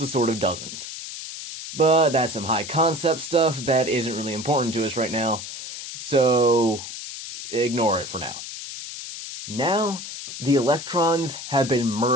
sort of doesn't. But that's some high concept stuff that isn't really important to us right now, so ignore it for now. Now, the electrons have been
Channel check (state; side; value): noise; left; hiss, 9 dB below the sound